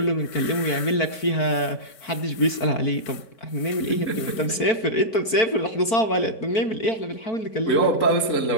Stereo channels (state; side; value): late; right; 4.5 ms